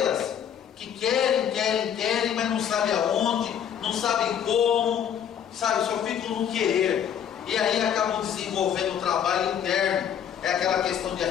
que querem, mas não sabem aonde, não sabem como, sabe, só ficam no querer, e aí acabam desenvolvendo um trabalho interno. É aquela questão de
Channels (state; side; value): quieter; right; 8.9 dB